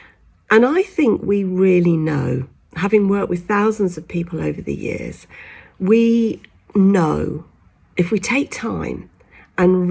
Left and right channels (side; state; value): both; identical; correlation 1.00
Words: And I think we really know, having worked with thousands of people over the years, we know if we take time and